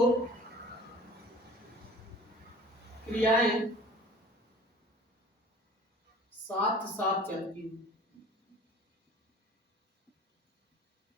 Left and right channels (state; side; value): normal; both; correlation 0.46